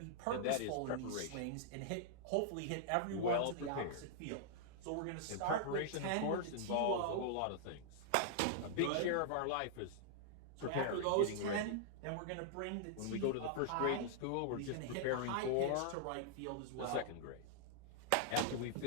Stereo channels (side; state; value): both; different; correlation -0.01